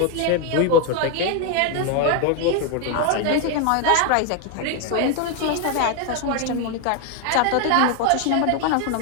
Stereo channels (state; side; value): different; both; correlation 0.01